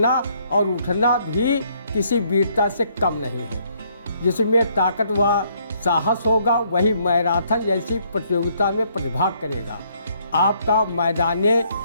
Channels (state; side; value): inverted; both; correlation -0.69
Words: और उठना भी किसी वीरता से कम नहीं है। जिसमें ताकत व साहस होगा वही मैराथन जैसी प्रतियोगिता में प्रतिभाग करेगा। आपका